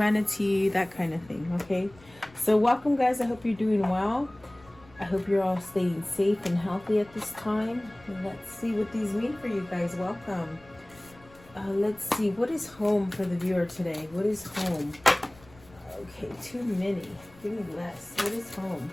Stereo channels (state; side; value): noise; left; rumble, 25 dB below the sound